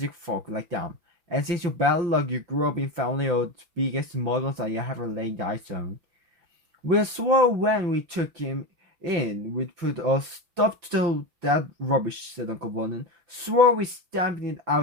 folk like them. And since your bad luck, you grew up in family of the biggest muggles I ever laid eyes on. We swore when we took him in we'd put a stop to that rubbish, said Uncle Vernon. Swore we stamped it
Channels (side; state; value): left; late; 6.0 ms